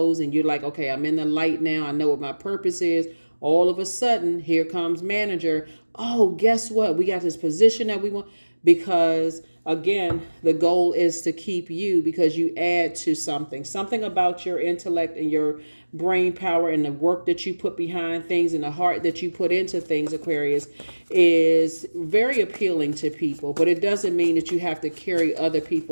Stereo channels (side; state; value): both; inverted; correlation -1.00